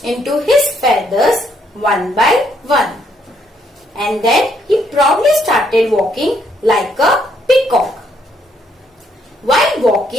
into his feathers one by one. And then he proudly started walking like a peacock. While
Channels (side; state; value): both; normal; correlation 0.71